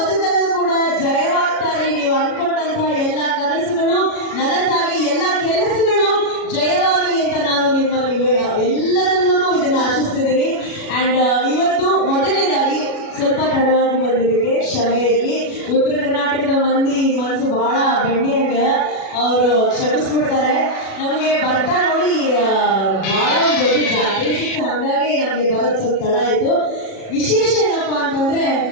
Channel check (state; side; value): late; right; 36 ms